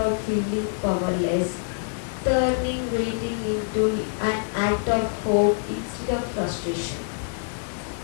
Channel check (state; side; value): silent; right; digital silence